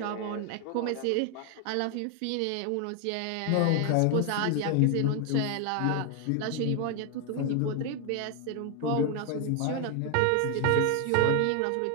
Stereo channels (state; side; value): different; both; correlation 0.00